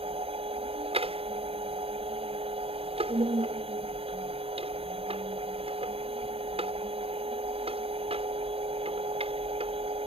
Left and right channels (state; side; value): late; left; 0.28 ms